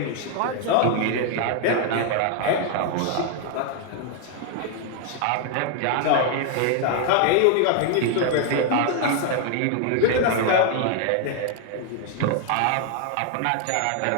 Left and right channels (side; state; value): both; different; correlation 0.00